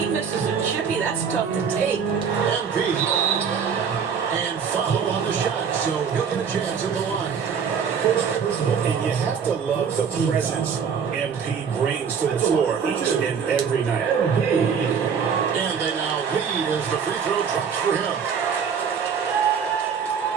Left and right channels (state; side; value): quieter; left; 6.8 dB